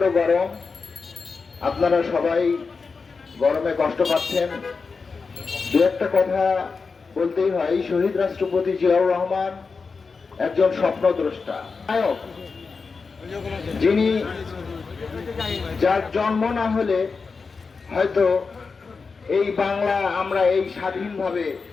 গরম, আপনারা সবাই গরমে কষ্ট পাচ্ছেন। দু একটা কথা বলতেই হয়, শহীদ রাষ্ট্রপতি জিয়াউর রহমান একজন স্বপ্নদ্রষ্টা নায়ক, যিনি যার জন্ম না হলে হয়তো এই বাংলা আমরা এই স্বাধীনভাবে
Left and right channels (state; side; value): quieter; right; 4.7 dB